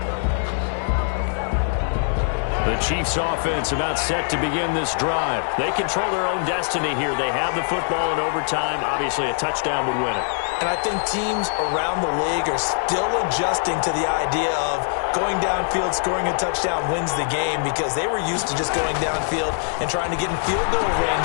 The Chiefs offense about set to begin this drive. They control their own destiny here. They have the football in overtime. Obviously, a touchdown would win it. And I think teams around the league are still adjusting to the idea of going downfield, scoring a touchdown wins the game because they were used to just going downfield and trying to get in field goal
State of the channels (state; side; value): silent; right; 60 dB below the other